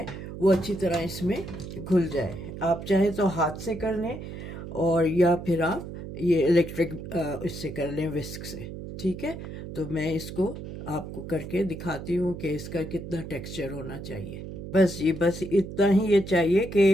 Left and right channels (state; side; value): noise; right; hum, 9 dB below the sound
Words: वो अच्छी तरह इसमें घुल जाए। आप चाहे तो हाथ से कर लें और या फिर आप ये इलेक्ट्रिक इससे कर लें, विस्क से। ठीक है, तो मैं इसको आपको करके दिखाती हूँ कि इसका कितना टेक्सचर होना चाहिए। बस इतना ही ये चाहिए